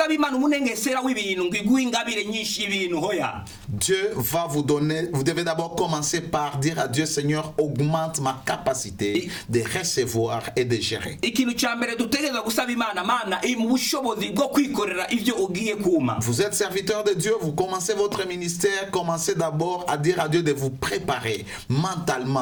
Dieu va vous donner, vous devez d'abord commencer par dire à Dieu, Seigneur, augmente ma capacité de recevoir et de gérer. Vous êtes serviteur de Dieu, vous commencez votre ministère, commencez d'abord à dire à Dieu de vous préparer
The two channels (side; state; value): both; identical; correlation 1.00